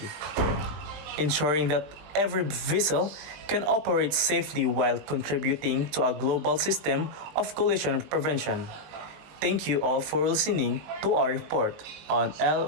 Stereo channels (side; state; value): left; late; 20 ms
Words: ensuring that every vessel can operate safely while contributing to a global system of collision prevention. Thank you all for listening to our report on